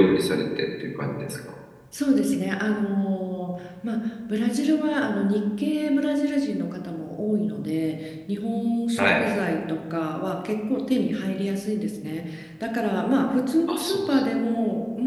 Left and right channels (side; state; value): both; identical; correlation 1.00